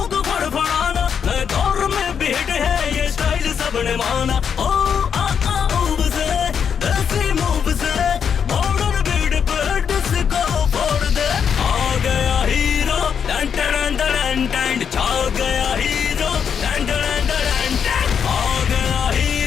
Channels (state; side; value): quieter; right; 7.3 dB